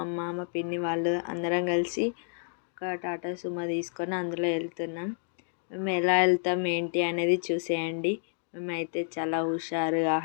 మా పిన్ని వాళ్ళు అందరం కలిసి ఒక టాటా సుమో తీసుకొని అందులో వెళ్తున్నాం. మేము ఎలా వెళ్తాం ఏంటి అనేది చూసేయండి. మేమైతే చాలా హుషారుగా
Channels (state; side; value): silent; right; 58 dB below the other